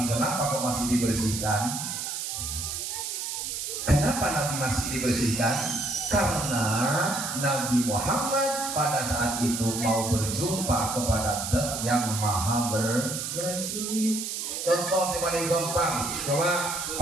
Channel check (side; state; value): right; noise; hiss, 4 dB below the sound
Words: kenapa kok masih dibersihkan? Kenapa Nabi masih dibersihkan? Karena Nabi Muhammad pada saat itu mau berjumpa kepada Zat yang Maha bersih. Contoh yang paling gampang, coba